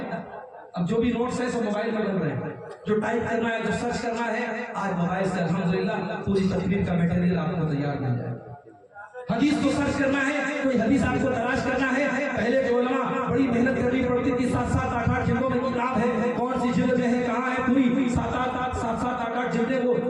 اب جو بھی نوٹس ہیں سب موبائل میں بن رہے ہیں. جو ٹائپ کرنا ہے, جو سرچ کرنا ہے, آج موبائل سے الحمدللہ پوری تقریر کا میٹیریل آپ کو تیار مل جائے. حدیث کو سرچ کرنا ہے, کوئی حدیث آپ کو تلاش کرنا ہے, پہلے کے علماء بڑی محنت کرنی پڑتی تھی. 7-7 8-8 جلدوں میں کتاب ہے, کون سی جلد میں ہے, کہاں ہے, پوری 7-7 8-8 جلدیں وہ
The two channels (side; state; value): both; identical; correlation 1.00